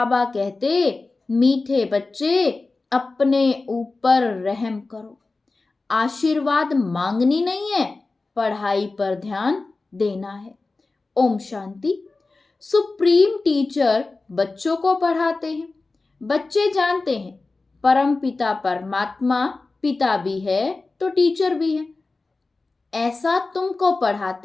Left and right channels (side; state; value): right; quieter; 3.6 dB